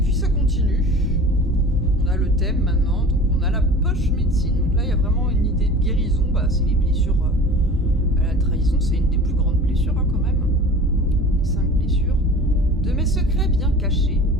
ça continue. On a le thème maintenant, donc on a la poche médecine. Donc là, il y a vraiment une idée de guérison. C'est les blessures à la trahison, c'est une des plus grandes blessures hein, quand même. Les 5 blessures. De mes secrets bien cachés,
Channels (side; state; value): both; normal; correlation 0.40